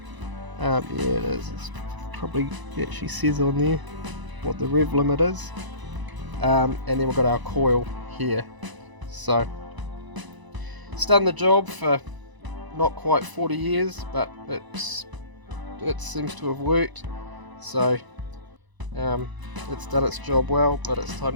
Yeah, it is. It actually says on there what the rev limit is. And then we've got our coil here. So it's done the job for not quite 40 years, but it seems to have worked. So it's done its job well, but it's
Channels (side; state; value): left; late; 1.0 ms